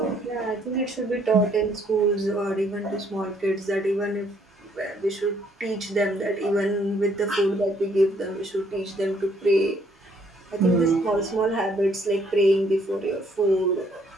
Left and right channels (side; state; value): both; normal; correlation 0.66